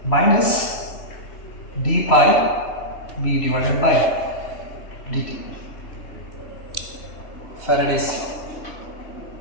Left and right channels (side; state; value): right; late; 3.1 ms